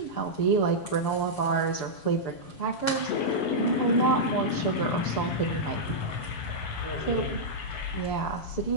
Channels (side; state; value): right; late; 7.1 ms